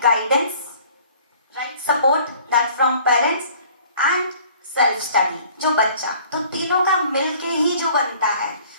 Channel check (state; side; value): inverted; both; correlation -0.53